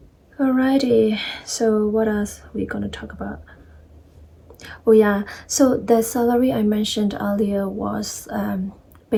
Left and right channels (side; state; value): both; identical; correlation 1.00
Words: Alrighty, so what else we gonna talk about? Oh yeah, so the salary I mentioned earlier was